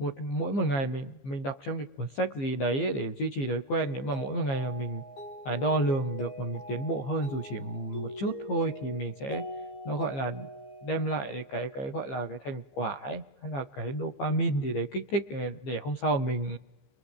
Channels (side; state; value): right; late; 15 ms